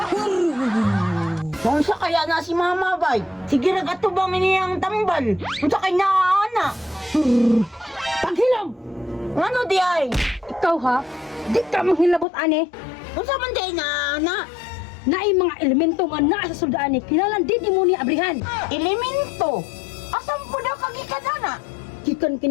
Kung sa kaya na si Mama bay, sige nagatubang iniyang tambal. Kung sa kaya na, Paghilaw! ano di ay? Ikaw ha, di ka manghilabot ane. Kung sa man di na, Naay mga elemento nga naa sa suldaan ni kinalan din mo ni abrihan. elemento. Asan po daw kagikadana? Gikan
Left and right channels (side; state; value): right; drops out; at 12.2 s